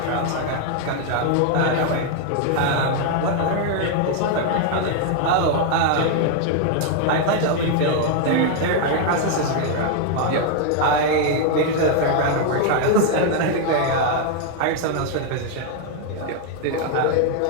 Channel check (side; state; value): both; different; correlation 0.00